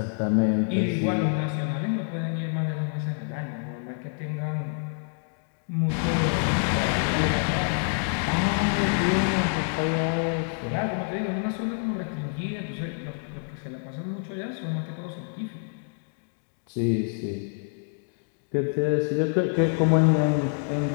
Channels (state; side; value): silent; right; 60 dB below the other